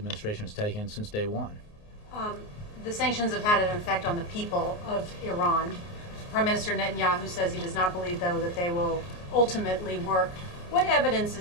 has taken since day one. The sanctions have had an effect on the people of Iran. Prime Minister Netanyahu says he does not believe, though, that they will ultimately work. What evidence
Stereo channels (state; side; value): late; right; 29 ms